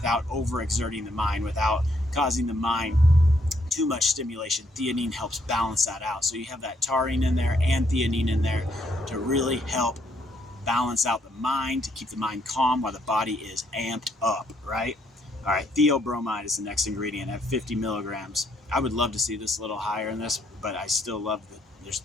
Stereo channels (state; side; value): normal; both; correlation 0.71